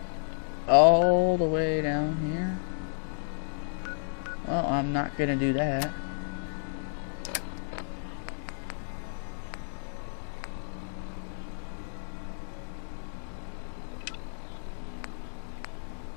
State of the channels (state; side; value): silent; right; digital silence